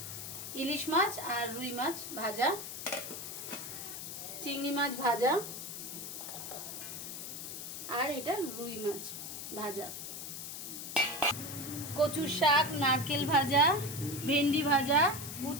ইলিশ মাছ আর রুই মাছ ভাজা, চিংড়ি মাছ ভাজা, আর এটা রুই মাছ ভাজা, কচুর শাক, নারকেল ভাজা, ভেন্ডি ভাজা,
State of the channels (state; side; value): noise; left; hiss, 8 dB below the sound